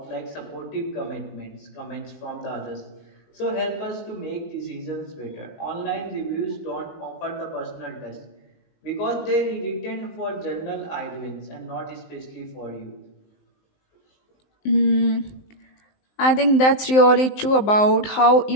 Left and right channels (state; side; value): late; right; 19 ms